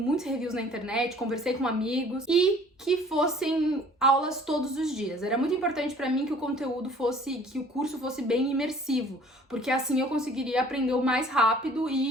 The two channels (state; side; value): normal; both; correlation 0.52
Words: reviews na internet, conversei com amigos, e que fossem aulas todos os dias. Era muito importante para mim que o que o curso fosse bem imersivo, porque assim eu conseguiria aprender o mais rápido